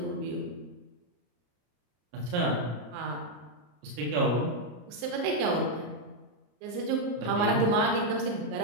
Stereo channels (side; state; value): left; late; 34 ms